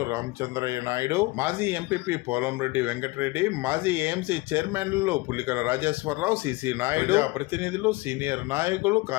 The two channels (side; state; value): right; quieter; 22.0 dB